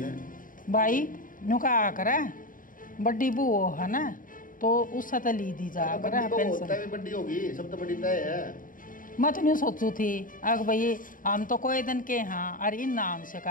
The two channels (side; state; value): right; late; 0.39 ms